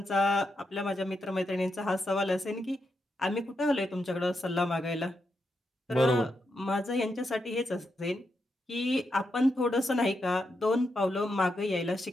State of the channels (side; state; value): both; normal; correlation 0.84